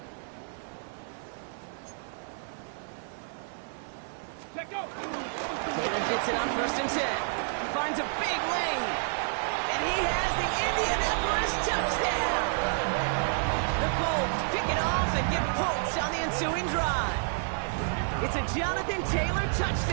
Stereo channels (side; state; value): left; silent; 58 dB below the other